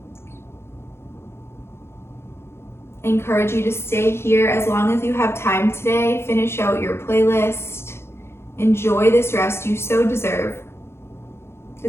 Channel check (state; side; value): late; right; 0.12 ms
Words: I encourage you to stay here as long as you have time today. Finish out your playlist. Enjoy this rest you so deserve.